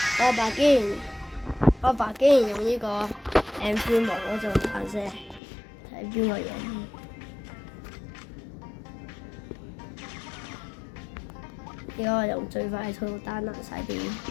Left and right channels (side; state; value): right; drops out; at 5.4 s